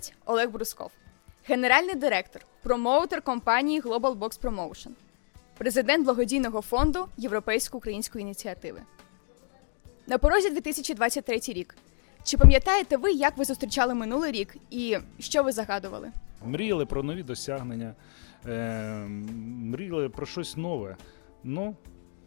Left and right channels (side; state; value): right; silent; 59 dB below the other